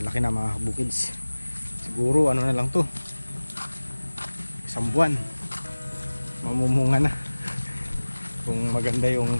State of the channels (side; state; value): both; inverted; correlation -1.00